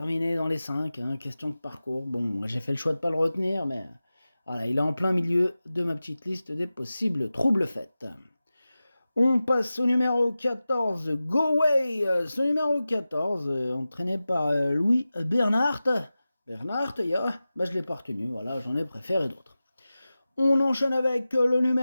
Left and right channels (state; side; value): inverted; both; correlation -0.95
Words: dans les 5, hein, question de parcours. Bon, j'ai fait le choix de ne pas le retenir, mais voilà, il est en plein milieu de ma petite liste des possibles troubles faits. On passe au numéro 14, Go Way. Ce numéro 14, entraîné par Louis Bernhardt. Bernhardt, je l'ai pas retenu, voilà, j'en ai préféré d'autres. On enchaîne avec le